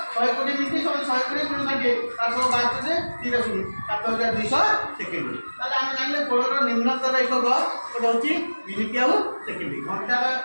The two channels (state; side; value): inverted; both; correlation -1.00